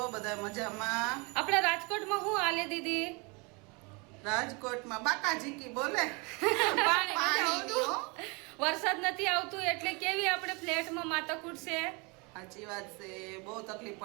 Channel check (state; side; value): quieter; left; 29.9 dB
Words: બધા? મજામાં? આપણે રાજકોટમાં હું આલે દીદી? રાજકોટમાં બાકાજી કી બોલે પાણી વરસાદ નથી આવતું એટલે કેવી આપણે ફ્લેટમાં માથાકૂટ છે. સાચી વાત છે. બહુ તકલીફ